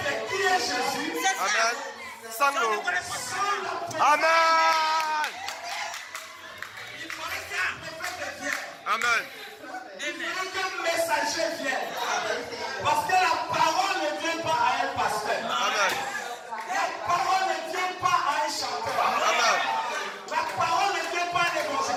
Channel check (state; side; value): identical; both; correlation 1.00